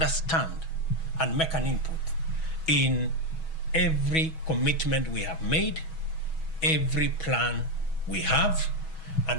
and make an input in every commitment we have made, every plan we have,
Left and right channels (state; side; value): late; right; 6.2 ms